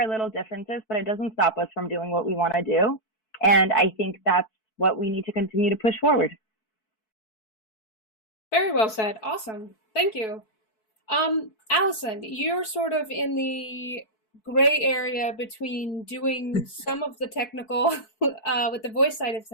little differences, but it doesn't stop us from doing what we want to do. And I think that's what we need to continue to push forward. Very well said. Awesome. Thank you. Allison, you're sort of in the gray area between doing some of the technical with the voice side of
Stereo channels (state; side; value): late; right; 4.6 ms